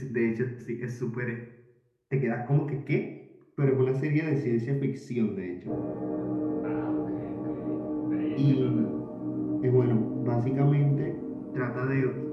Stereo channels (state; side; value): identical; both; correlation 1.00